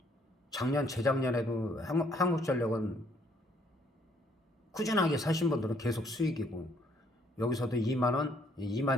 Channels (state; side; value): normal; both; correlation 0.66